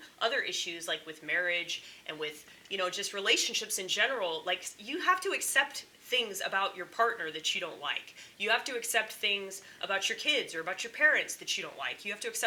other issues, like with marriage and with, you know, just relationships in general. Like, you have to accept things about your partner that you don't like. You have to accept things about your kids or about your parents that you don't like. You have to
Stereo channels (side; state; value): both; identical; correlation 1.00